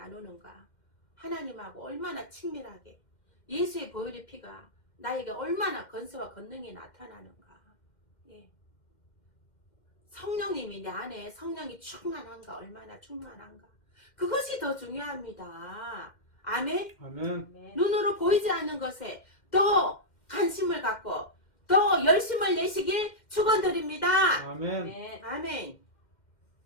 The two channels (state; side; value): late; right; 2.1 ms